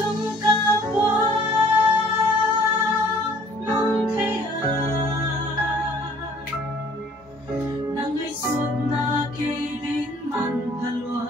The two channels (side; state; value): both; normal; correlation 0.55